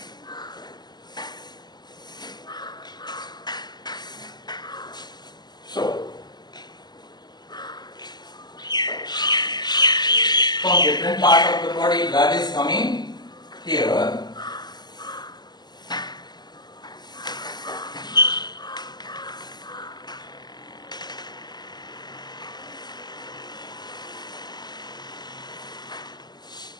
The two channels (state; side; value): late; right; 0.21 ms